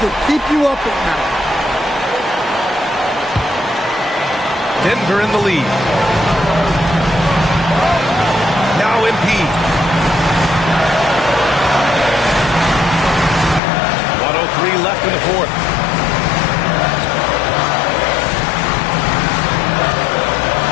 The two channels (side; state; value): right; drops out; at 13.6 s